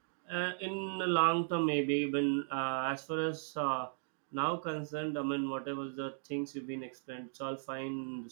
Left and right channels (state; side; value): silent; left; digital silence